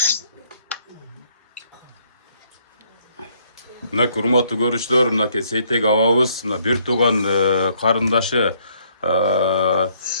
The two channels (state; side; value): inverted; both; correlation -0.68